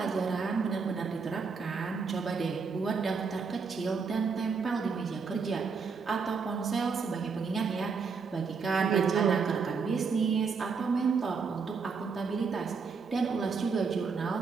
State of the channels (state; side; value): quieter; left; 5.2 dB